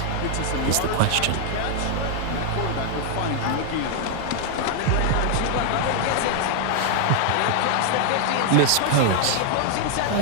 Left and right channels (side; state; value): both; different; correlation 0.00